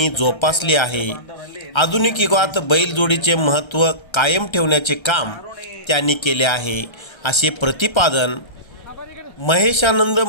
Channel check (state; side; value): late; right; 1.3 ms